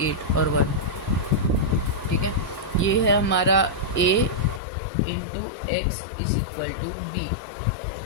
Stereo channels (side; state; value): right; drops out; at 4.6 s